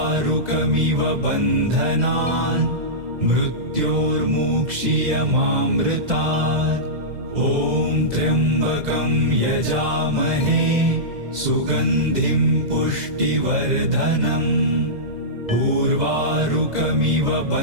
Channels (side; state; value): left; late; 2.0 ms